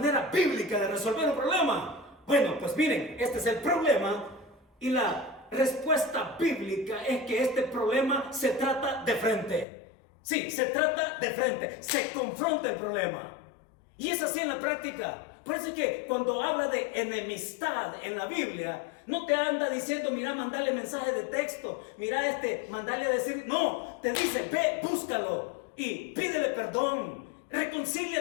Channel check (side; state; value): right; drops out; at 9.7 s